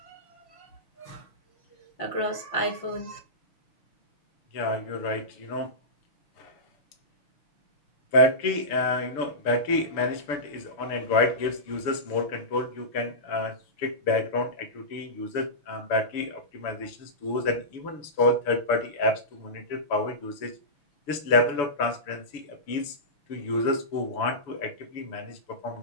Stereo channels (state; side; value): late; right; 6.9 ms